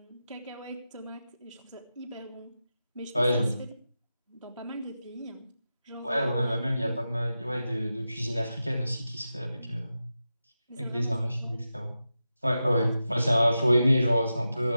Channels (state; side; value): inverted; both; correlation -0.91